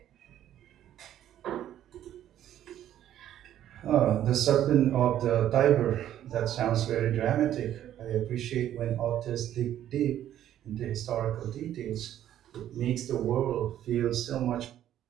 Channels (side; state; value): left; quieter; 11.6 dB